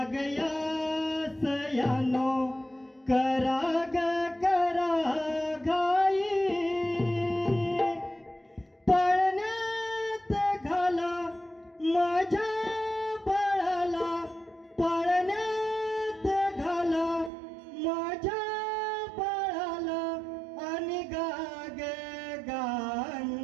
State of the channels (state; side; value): drops out; left; at 17.3 s